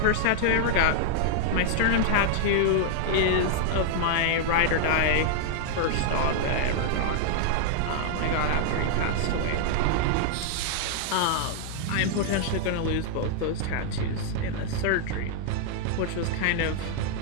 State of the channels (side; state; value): both; different; correlation -0.01